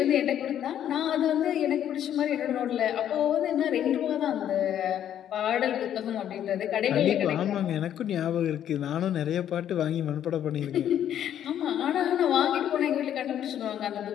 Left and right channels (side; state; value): right; quieter; 10.3 dB